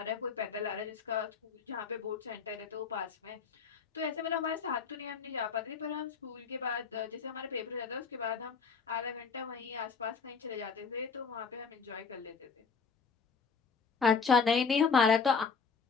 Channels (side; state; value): right; quieter; 5.5 dB